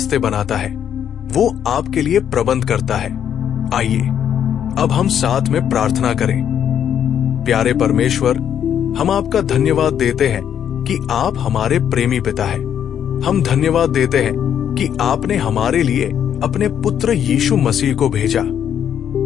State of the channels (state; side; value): quieter; right; 9.2 dB